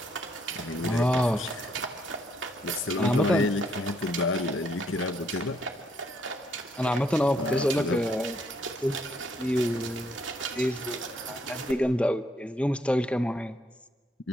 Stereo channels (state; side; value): normal; both; correlation 0.71